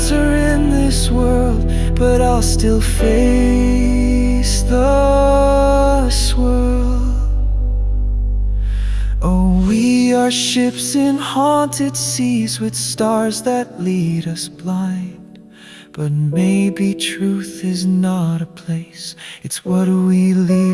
in this world, but I'll still face the swirl. Oh, we are ships in haunted seas with stars that lead us blind. But maybe truth is not a place, it's what we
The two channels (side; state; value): both; identical; correlation 1.00